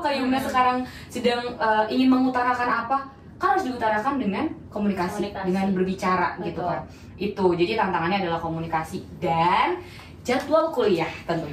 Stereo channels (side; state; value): both; identical; correlation 1.00